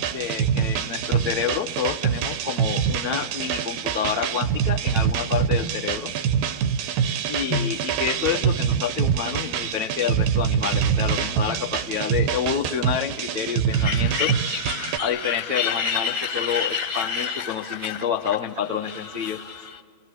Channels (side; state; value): left; late; 13 ms